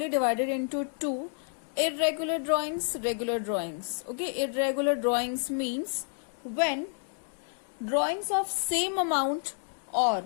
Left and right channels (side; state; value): right; silent; 58 dB below the other